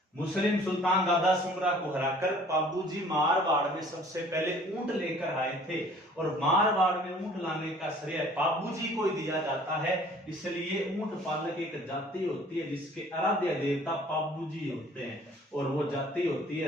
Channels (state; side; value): normal; both; correlation 0.53